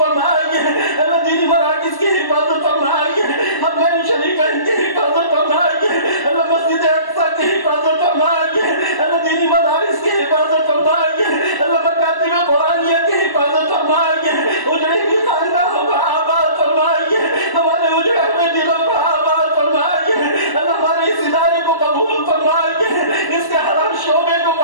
اللہ دینی مراکز کی حفاظت فرمائیے، حرمین شریفین کی حفاظت فرمائیے، اللہ مسجد اقصی کی حفاظت فرمائیے، اللہ دینی مدارس کی حفاظت فرمائیے، اللہ مکاتب قرآنیہ کی حفاظت فرمائیے، اجڑی ہوئی خاندانوں کو آباد فرمائیے، ہمارے اجڑے ہوئے دلوں کو آباد فرمائیے، اللہ ہمارے اس ادارے کو قبول فرمائیے، اس کے ہر شعبے کو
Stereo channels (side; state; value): right; late; 1.0 ms